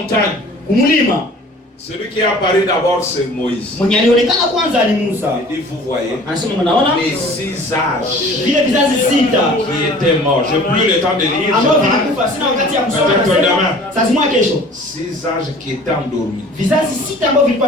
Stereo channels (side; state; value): both; normal; correlation 0.47